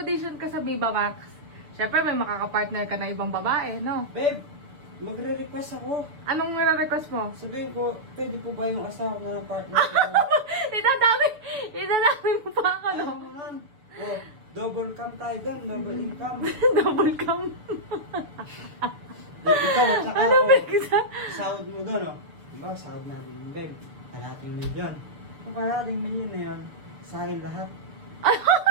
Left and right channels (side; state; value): left; late; 7.0 ms